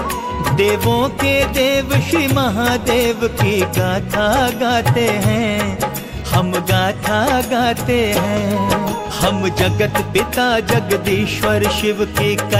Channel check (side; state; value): both; identical; correlation 1.00